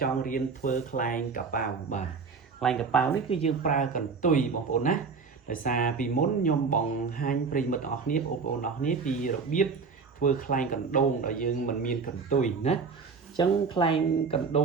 ចង់រៀនធ្វើខ្លែងកប៉ាវបាទខ្លែងកប៉ាវនេះគឺយើងប្រើកន្ទុយបងប្អូនណាដោយសារពីមុនខ្ញុំបង្ហាញប្រិយមិត្តទាំងអស់គ្នាបងប្អូនទាំងអស់គ្នាពីរបៀបធ្វើខ្លែងកណ្ដូងដែលយើងមិនមានកន្ទុយណាអញ្ចឹងខ្លែងកណ្ដូ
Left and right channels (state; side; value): quieter; left; 5.1 dB